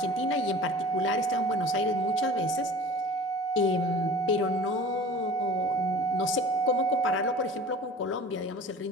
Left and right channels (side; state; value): both; normal; correlation 0.41